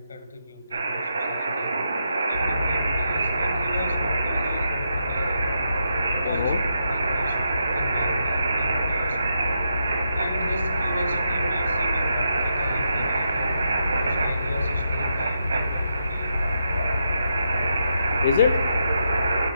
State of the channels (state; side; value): inverted; both; correlation -0.81